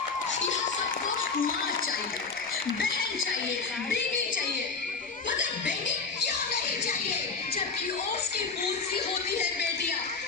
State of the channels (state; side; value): quieter; right; 4.7 dB